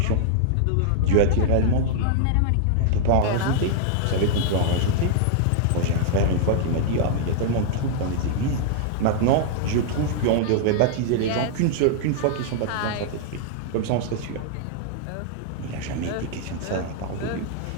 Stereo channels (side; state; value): both; different; correlation -0.01